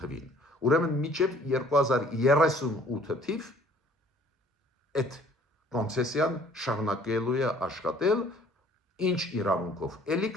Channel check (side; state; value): both; normal; correlation 0.56